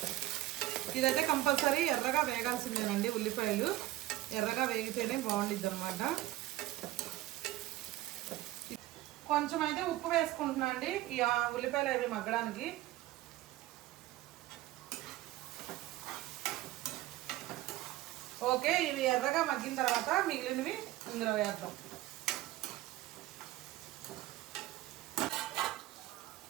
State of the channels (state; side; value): quieter; left; 16.0 dB